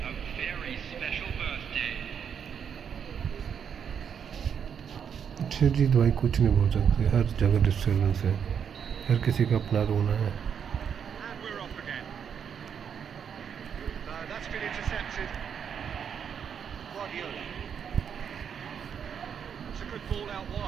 very special birthday. अच्छा जी भाई कुछ नहीं बोल सकते, हर जगह डिस्टर्बेंस है, हर किसी का अपना रोना है। And we're off again. That's been intercepted. Guardiola. It's a good ball out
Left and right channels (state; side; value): quieter; left; 7.6 dB